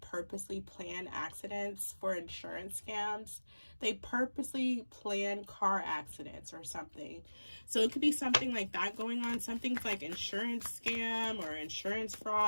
purposely plan accidents for insurance scams. They purposely plan car accidents or something. So it could be something like that going on. Something's like insurance scam or insurance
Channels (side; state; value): both; inverted; correlation -1.00